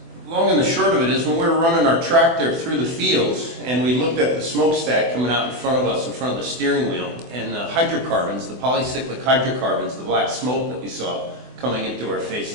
Long and the short of it is, when we were running our tractor through the fields and we looked at the smokestack coming out in front of us, in front of the steering wheel, and the hydrocarbons, the polycyclic hydrocarbons, the black smoke that we saw coming into our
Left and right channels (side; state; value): left; late; 24 ms